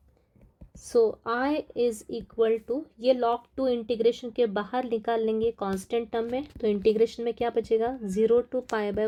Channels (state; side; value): identical; both; correlation 1.00